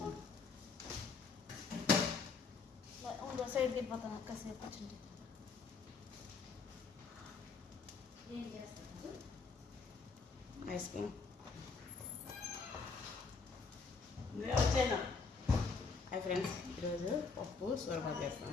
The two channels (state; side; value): quieter; right; 4.7 dB